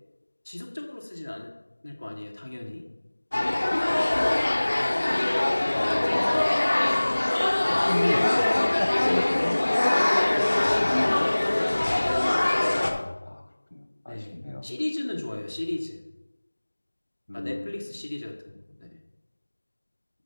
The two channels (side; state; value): both; inverted; correlation -1.00